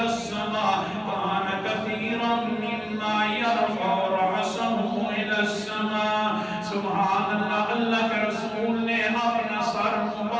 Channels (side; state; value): both; identical; correlation 1.00